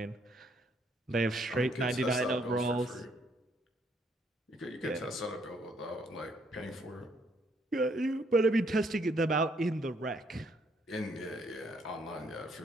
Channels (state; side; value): normal; both; correlation 0.69